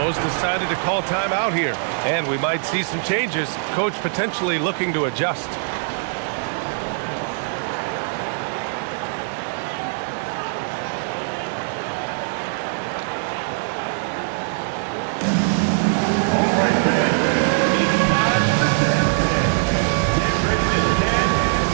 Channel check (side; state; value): left; silent; digital silence